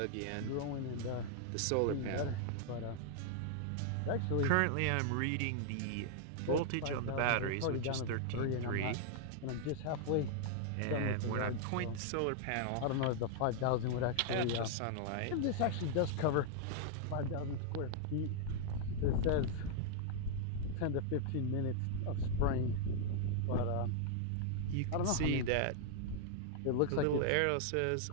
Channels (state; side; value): different; both; correlation 0.00